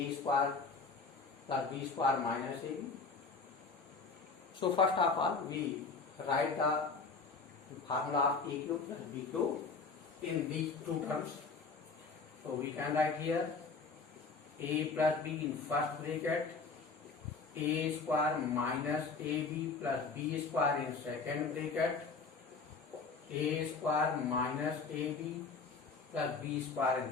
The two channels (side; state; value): right; quieter; 4.5 dB